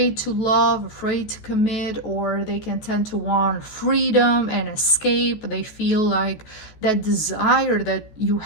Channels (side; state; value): right; late; 14 ms